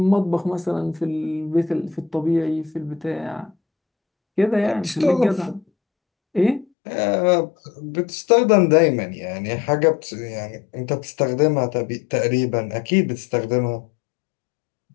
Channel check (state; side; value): drops out; right; at 6.7 s